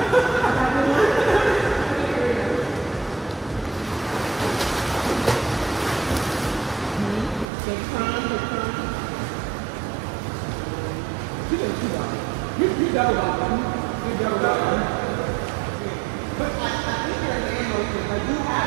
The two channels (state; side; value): drops out; left; at 7.5 s